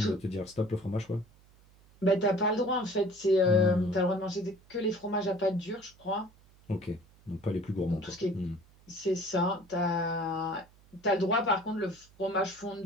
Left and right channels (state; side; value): noise; right; hum, 28 dB below the sound